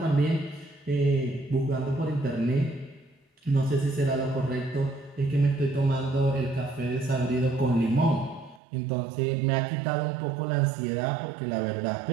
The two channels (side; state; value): left; drops out; at 8.6 s